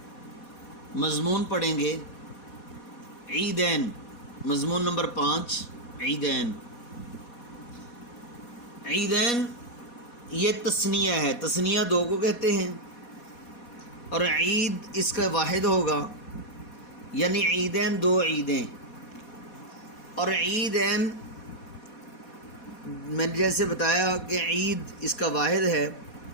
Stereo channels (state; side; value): late; right; 4.2 ms